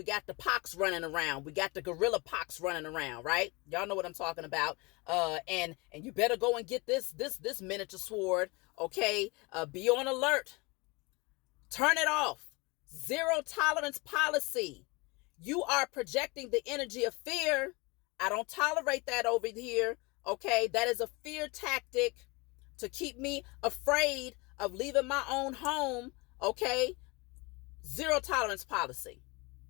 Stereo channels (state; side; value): quieter; right; 26.4 dB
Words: got the pox running around. We got the gorilla pox running around, right? Y'all know what I'm talking about. And you better go and get this miniature sword. Okay? Be on alert. Turn it off. Zero tolerance policy. You are projecting the energy of fear. I don't tolerate that over here. Okay? That is a fear tactic to keep me afraid of leaving my own home. Okay? Zero tolerance policy.